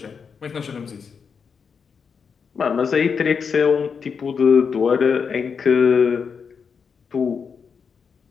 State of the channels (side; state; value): right; quieter; 6.1 dB